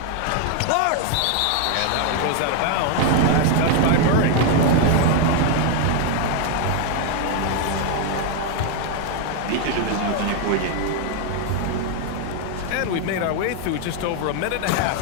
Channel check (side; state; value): both; different; correlation 0.01